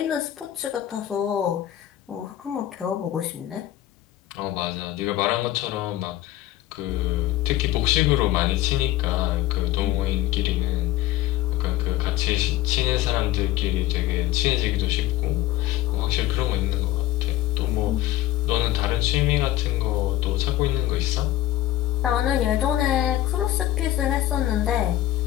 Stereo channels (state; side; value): quieter; right; 14.2 dB